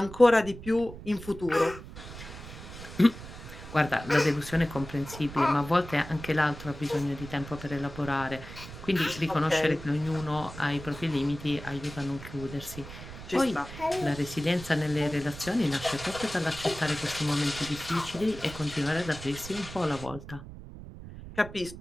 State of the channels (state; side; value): noise; right; rumble, 13 dB below the sound